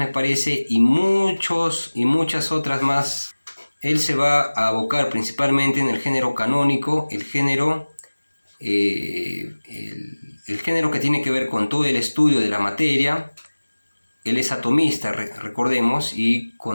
parece, y muchas otras más. Él se va a abocar principalmente en el género canónico, el género que tiene que ver con todo el estudio de la materia. Él es atomista, recordemos, y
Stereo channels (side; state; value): both; inverted; correlation -1.00